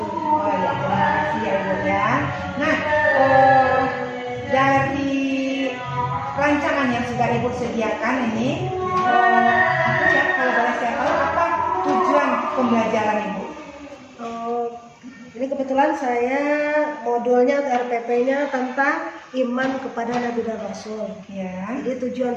Oh ya, terima kasih ya Ibu ya. Nah, dari rancangan yang sudah Ibu sediakan ini, apa ya, kalau boleh saya tahu apa tujuan pembelajaran Ibu? Ini kebetulan saya modulnya atau RPP-nya tentang iman kepada Nabi dan Rasul. Ya. Jadi tujuan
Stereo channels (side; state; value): both; identical; correlation 1.00